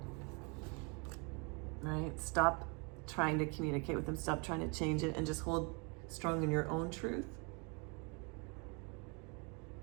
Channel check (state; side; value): quieter; left; 32.9 dB